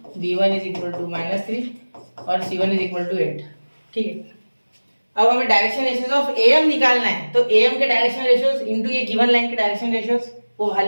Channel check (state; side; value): inverted; both; correlation -1.00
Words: b1 = -3 और c1 = 8, ठीक है। अब हमें डायरेक्शन रेशियोज ऑफ am निकालना है, तो am के डायरेक्शन रेशियोज इनटू ये गिवन लाइन के डायरेक्शन रेशियोज वो वहां